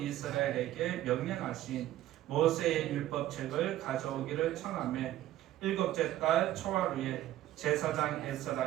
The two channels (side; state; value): left; quieter; 14.1 dB